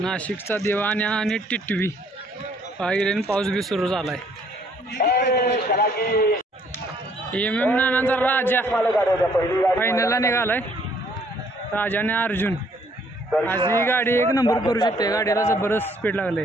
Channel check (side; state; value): both; normal; correlation 0.64